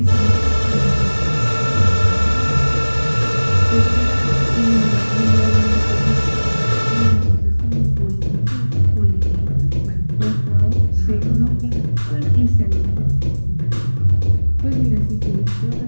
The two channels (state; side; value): inverted; both; correlation -1.00